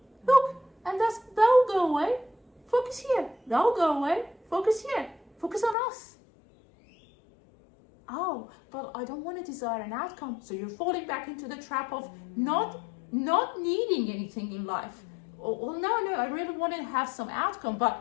Look, and that'll go away. Focus here. That'll go away. Focus here. Focus on us. Oh, but I don't want to desire an outcome. So you're falling back into the trap of not needing anything in life. Well, no, I really want to have some outcome,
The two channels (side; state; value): right; drops out; at 5.8 s